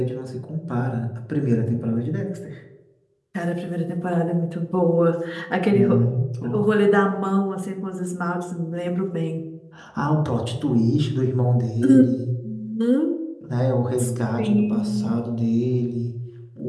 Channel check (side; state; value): both; identical; correlation 1.00